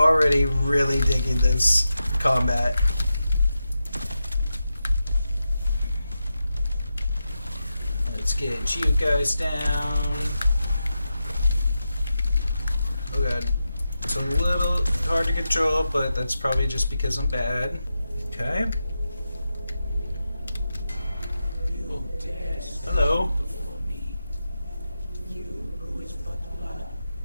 really digging this combat. Let's get you guys down. Oh god. It's a little hard to control, but that's probably just because I'm bad. Okay. Hello.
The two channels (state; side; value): inverted; both; correlation -0.89